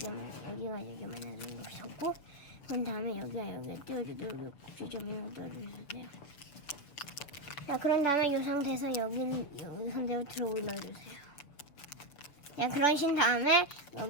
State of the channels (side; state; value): right; late; 6.8 ms